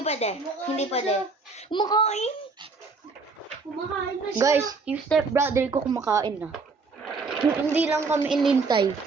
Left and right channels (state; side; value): quieter; left; 4.2 dB